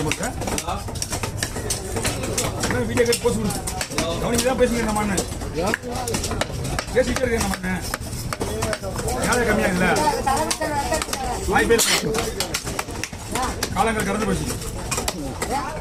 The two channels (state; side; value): identical; both; correlation 1.00